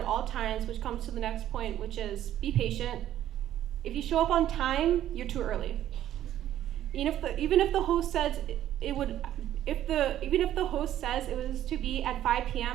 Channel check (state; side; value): quieter; left; 12.1 dB